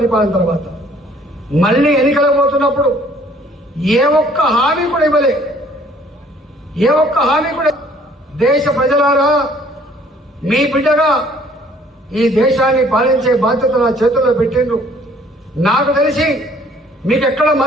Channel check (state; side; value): normal; both; correlation 0.58